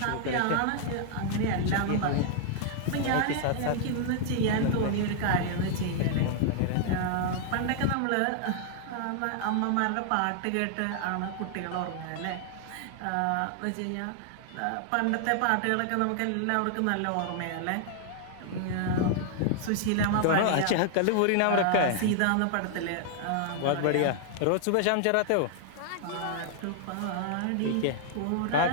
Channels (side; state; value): both; different; correlation 0.00